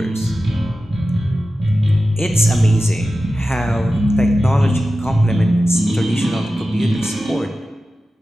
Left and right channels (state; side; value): normal; both; correlation 0.94